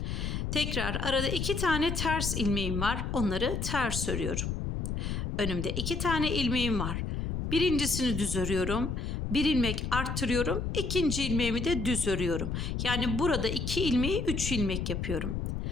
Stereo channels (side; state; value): left; noise; rumble, 2 dB below the sound